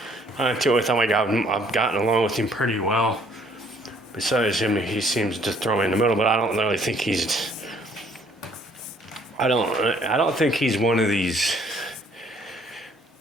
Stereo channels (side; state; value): both; normal; correlation 0.62